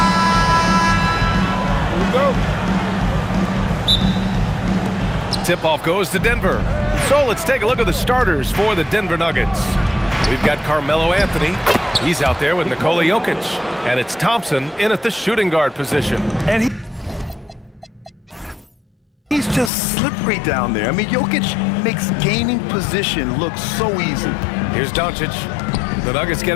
Tip-off goes to Denver. So let's take a look at the starters for the Denver Nuggets. We've got Carmelo Anthony. He's out there with Nikola Jokic. And it's Thompson in at the shooting guard position. And he's just slippery down there. I mean, Jokic makes gaining position look so easy. Here's Doncic. The Nuggets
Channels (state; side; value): drops out; right; at 19.7 s